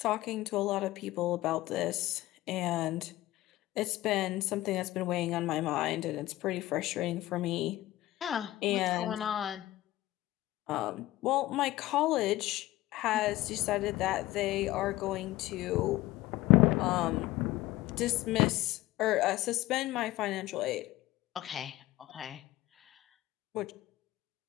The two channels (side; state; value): right; quieter; 16.6 dB